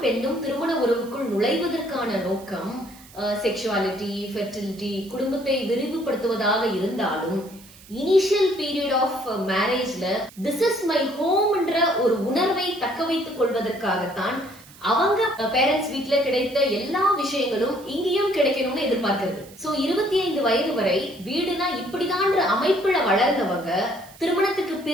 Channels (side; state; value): right; noise; hiss, 22 dB below the sound